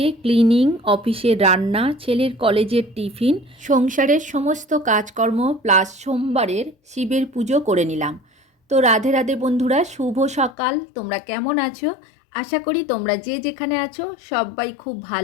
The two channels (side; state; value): right; drops out; at 10.6 s